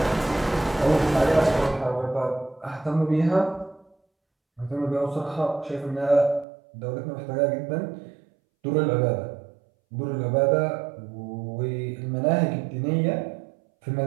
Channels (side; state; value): left; drops out; at 6.5 s